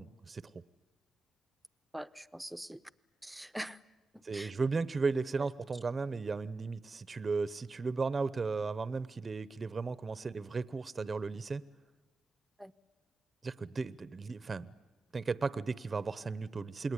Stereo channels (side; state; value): left; quieter; 3.8 dB